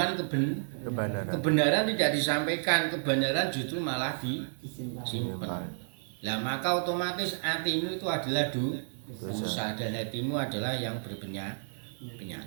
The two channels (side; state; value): left; silent; digital silence